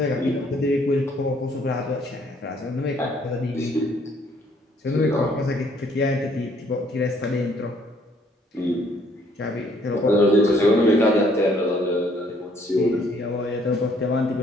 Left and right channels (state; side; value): normal; both; correlation 0.64